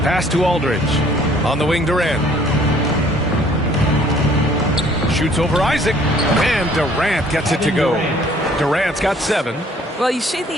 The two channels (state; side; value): normal; both; correlation 0.58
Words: Pass to Aldridge. On the wing, Durant. Shoots over Isaac. And Durant gets it to go. Durant's got 7. Well, you see